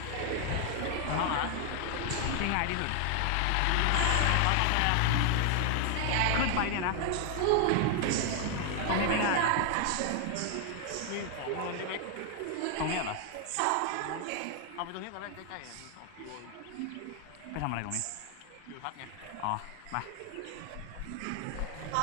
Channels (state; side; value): different; both; correlation 0.00